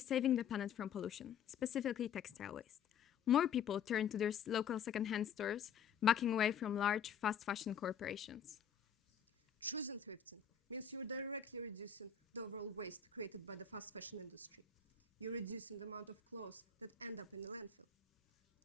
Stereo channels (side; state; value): right; quieter; 7.6 dB